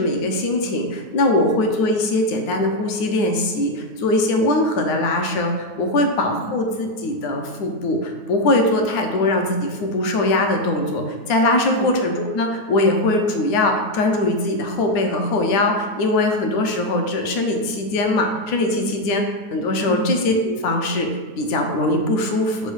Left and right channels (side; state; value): right; late; 9.3 ms